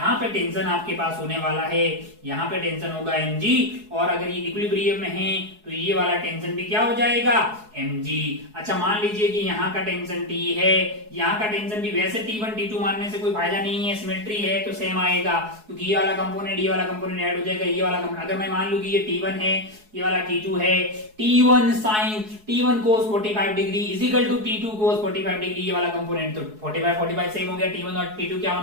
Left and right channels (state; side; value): late; left; 4.7 ms